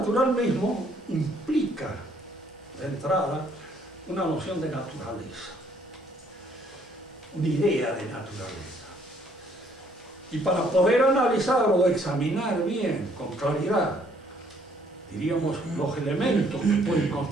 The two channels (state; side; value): normal; both; correlation 0.65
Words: mismo implica, de entrada, una noción de naturaleza, una idea de naturaleza. Y para poder analizar o examinar bien, con claridad, diríamos, los elementos que pueden